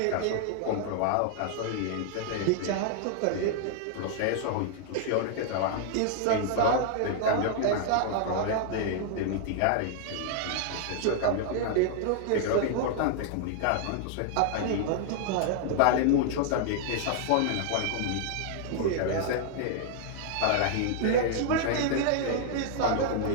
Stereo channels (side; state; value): both; different; correlation 0.00